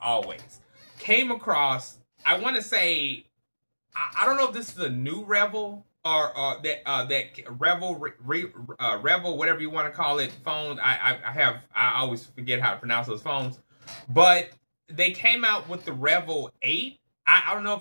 Came across, I want to say, I don't know if this is a new Revel or that Revel, Revel, whatever you want to call it, phone. I always forget how to pronounce those phones. But they came out with the Revel 8. I don't know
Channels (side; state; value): both; inverted; correlation -1.00